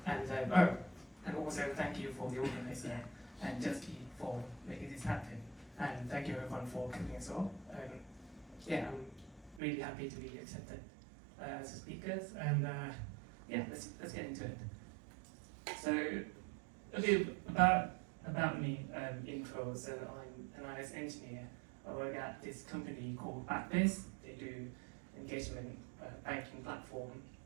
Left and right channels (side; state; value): left; drops out; at 9.6 s